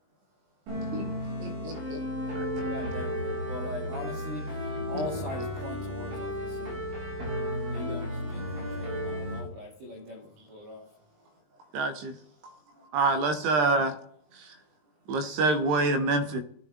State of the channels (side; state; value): left; late; 20 ms